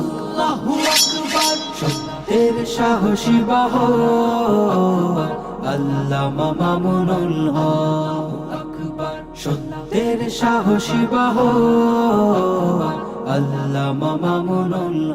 আকবার। সত্যের সাহসী বহর আল্লামা মামুনুল হক আকবার। সত্যের সাহসী বহর আল্লামা মামুনুল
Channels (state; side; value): identical; both; correlation 1.00